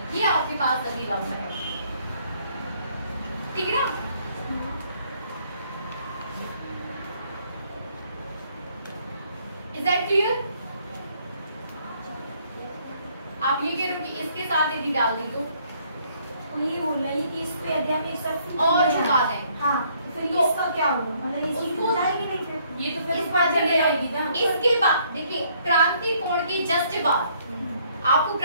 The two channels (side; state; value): both; inverted; correlation -0.66